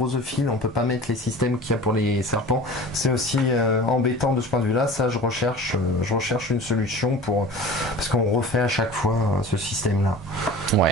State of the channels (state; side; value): normal; both; correlation 0.39